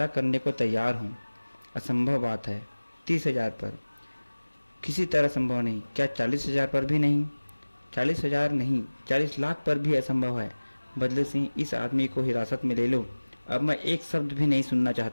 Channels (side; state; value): both; inverted; correlation -1.00